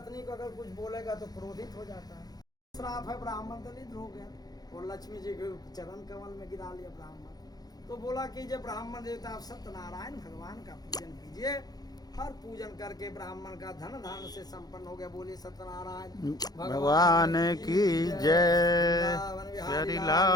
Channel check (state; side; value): late; right; 0.19 ms